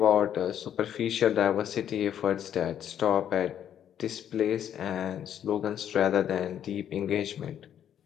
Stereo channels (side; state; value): right; quieter; 9.8 dB